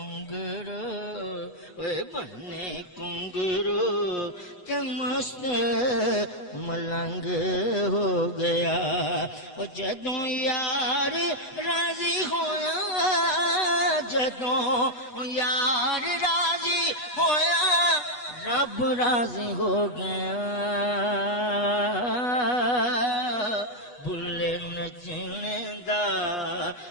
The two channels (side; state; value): right; late; 8.1 ms